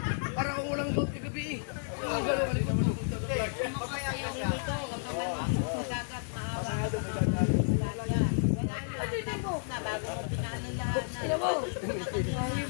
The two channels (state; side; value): silent; right; digital silence